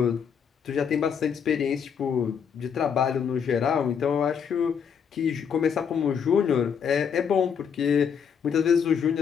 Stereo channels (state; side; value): quieter; right; 7.2 dB